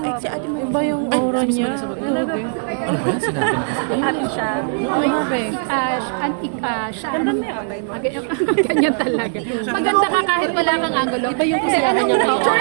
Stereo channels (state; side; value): silent; left; 66 dB below the other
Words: yung Ay, aura niya. Talaga. Happy siya. Siya, ganyan talaga. Maganda ka kahit wala kang angulo. Iba yung kasi